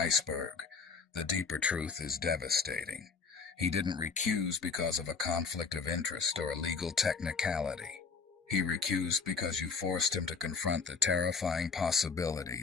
The deeper truth is devastating. He didn't recuse because of a conflict of interest or a legal technicality. He recused because you forced him to confront the terrifying possibility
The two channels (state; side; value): quieter; right; 5.2 dB